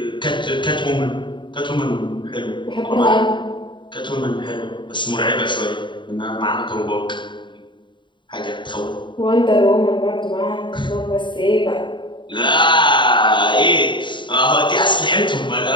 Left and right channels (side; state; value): right; late; 0.23 ms